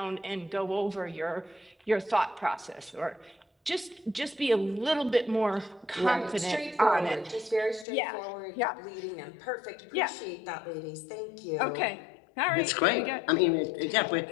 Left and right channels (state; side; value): drops out; right; at 7.9 s